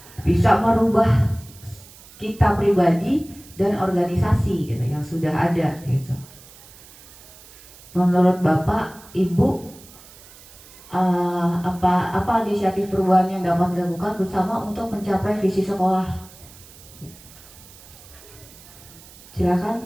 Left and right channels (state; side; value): noise; right; hiss, 21 dB below the sound